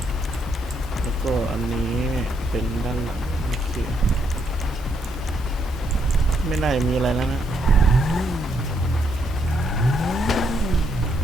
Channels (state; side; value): normal; both; correlation 0.75